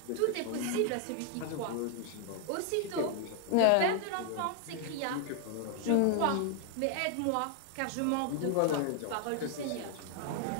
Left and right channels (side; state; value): both; different; correlation 0.00